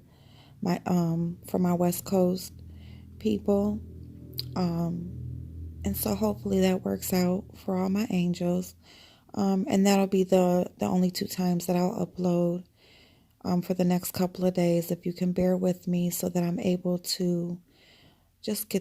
my West Coast people. And so hopefully that works out for all my angels. And that'll be the only two times that I'll upload for the next couple of days. If you can bear with me so that I'm able to just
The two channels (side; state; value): both; identical; correlation 1.00